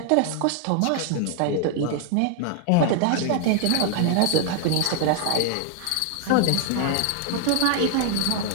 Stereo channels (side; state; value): both; different; correlation 0.00